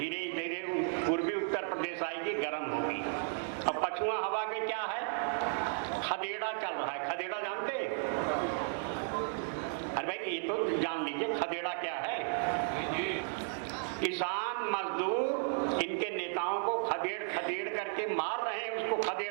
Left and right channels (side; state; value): left; silent; 55 dB below the other